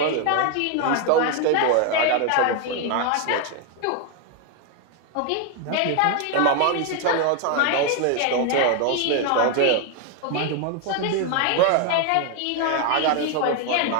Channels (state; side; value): different; both; correlation 0.01